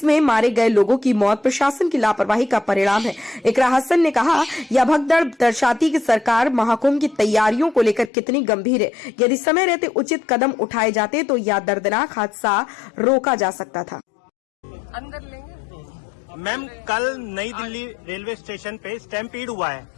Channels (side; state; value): right; drops out; at 8.1 s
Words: मारे गए लोगों की मौत प्रशासन की लापरवाही का परिणाम है। इकरा हसन ने कहा, यह भगदड़ दर्शाती कि सरकार महाकुंभ की तैयारियों को लेकर कितनी गंभीर है। यदि समय रहते उचित कदम उठाए जाते तो यह दर्दनाक हादसा रोका जा सकता था। अंदर लेंगे। मैम, कल नई दिल्ली रेलवे स्टेशन पे स्टैम्पीड हुआ है,